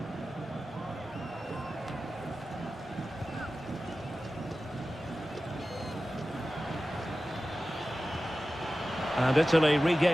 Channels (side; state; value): both; normal; correlation 0.95